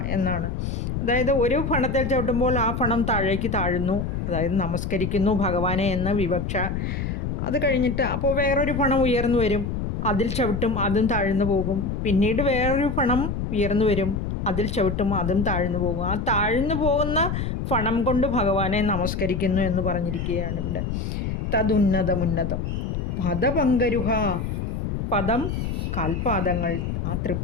എന്നാണ്. അതായത് ഒരു ഫണത്തിൽ ചവിട്ടുമ്പോൾ ആ ഫണം താഴേക്ക് താഴുന്നു, അതായത് നമസ്കരിക്കുന്നു ഭഗവാനെ എന്ന വിവക്ഷ. അത് കഴിഞ്ഞിട്ട് അപ്പോൾ വേറൊരു ഫണം ഉയർന്നു വരും, അതിൽ ചവിട്ടും, അതും താഴ്ന്നു പോകും. പിന്നീട് വേറൊരു ഫണം ഉയർന്നു വരും, അതിൽ ചവിട്ടും, അതും താഴ്ന്നു പോകും. ആ താഴ്ന്നു പോകുന്ന ഫണം കൊണ്ട് ഭഗവാനെ നമസ്കരിക്കുന്നു എന്ന് പറഞ്ഞിരിക്കുകയാണ് ഇവിടെ. തതുന്നതമുന്നതം പദപങ്കരുഹ, പദം കാൽപാദങ്ങൾ, ആ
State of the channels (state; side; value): noise; left; rumble, 3 dB below the sound